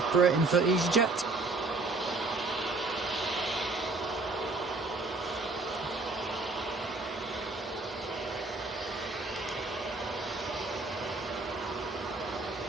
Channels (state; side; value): quieter; left; 3.4 dB